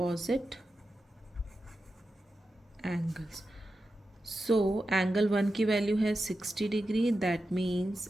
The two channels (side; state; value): both; normal; correlation 0.91